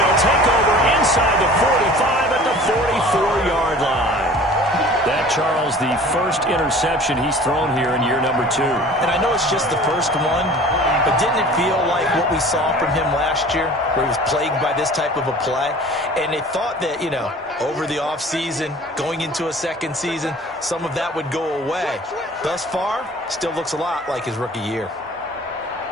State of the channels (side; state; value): both; normal; correlation 0.45